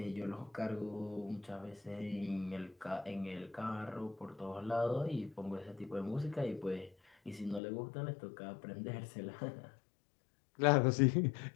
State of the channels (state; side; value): drops out; right; at 7.6 s